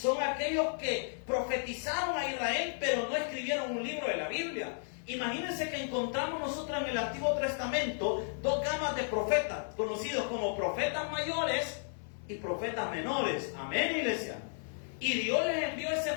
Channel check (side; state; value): right; silent; 55 dB below the other